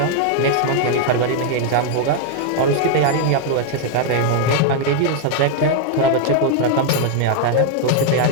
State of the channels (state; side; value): different; both; correlation 0.00